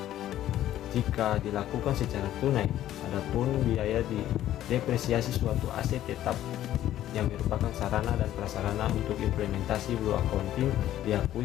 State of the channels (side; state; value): right; quieter; 12.7 dB